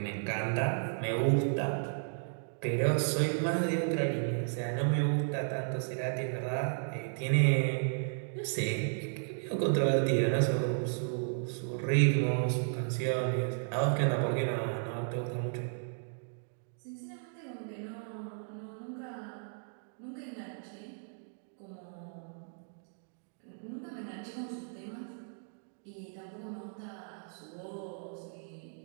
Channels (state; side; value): silent; left; digital silence